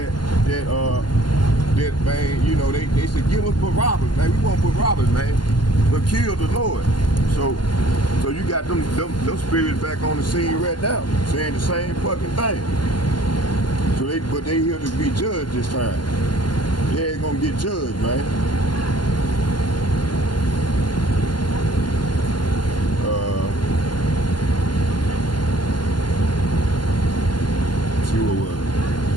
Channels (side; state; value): right; late; 0.71 ms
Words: that man, you know, they said, give us Barabbas, man. We want Barabbas, man, but kill the Lord. So you got them spirits back on the scene right now, saying the same fucking thing. So but they here to be judged this time. They ain't gonna get judged, man. See what was it?